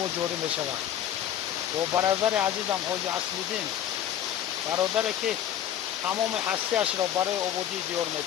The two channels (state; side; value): quieter; right; 10.8 dB